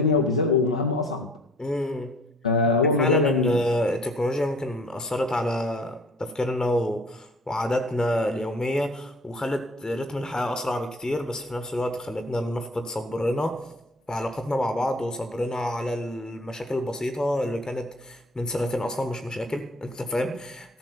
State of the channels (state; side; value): normal; both; correlation 0.52